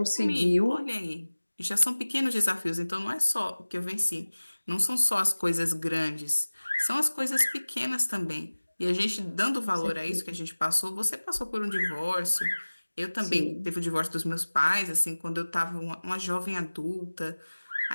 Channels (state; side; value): inverted; both; correlation -1.00